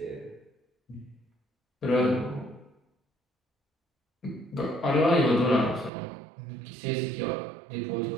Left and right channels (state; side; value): drops out; left; at 5.9 s